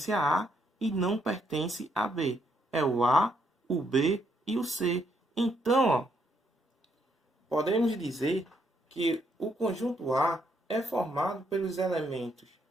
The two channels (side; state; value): both; normal; correlation 0.74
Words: a A e não pertencem a B? É o A, o B e o C. Então, ó, podemos dizer que o conjunto A é formado pelos elementos